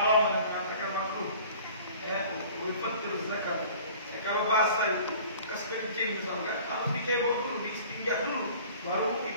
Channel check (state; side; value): inverted; both; correlation -0.47